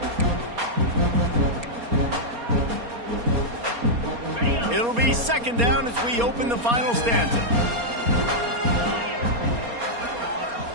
It'll be 2nd down as we open the final stanza.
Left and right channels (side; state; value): left; late; 4.3 ms